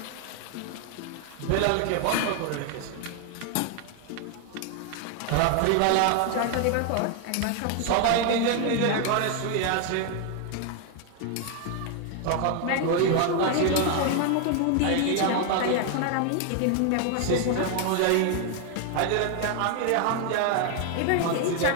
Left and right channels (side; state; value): both; different; correlation 0.01